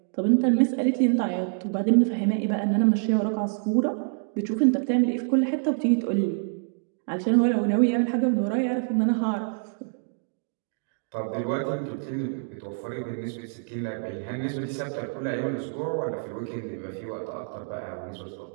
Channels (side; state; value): left; silent; digital silence